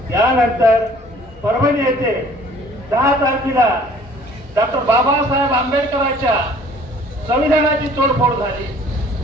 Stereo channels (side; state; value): both; normal; correlation 0.53